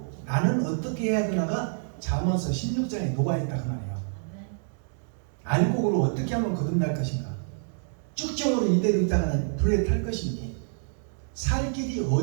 나는 어떻게 해야 되나가 잠언서 16장에 녹아있다 그 말이에요. 알곡으로 어떻게 하면 거듭날 것인가? 쭉정으로 이대로 있다가는 불에 탈 것이니 살 길이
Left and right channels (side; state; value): left; silent; digital silence